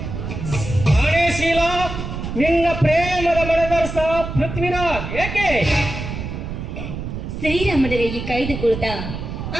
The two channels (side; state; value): right; noise; rumble, 7 dB below the sound